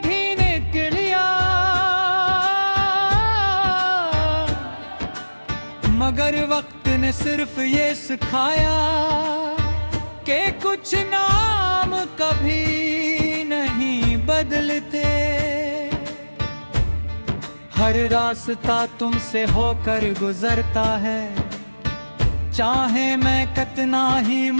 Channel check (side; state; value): both; inverted; correlation -1.00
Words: कर लिया, मगर वक्त ने सिर्फ ये सिखाया कि कुछ नाम कभी नहीं बदलते। हर रास्ता तुमसे होकर गुजरता है, चाहे मैं कितना ही